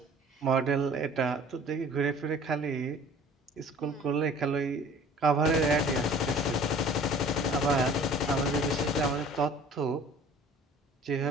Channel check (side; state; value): both; normal; correlation 0.48